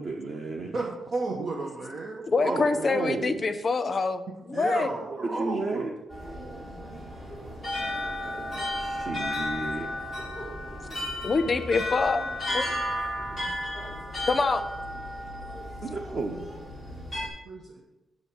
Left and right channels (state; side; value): normal; both; correlation 0.86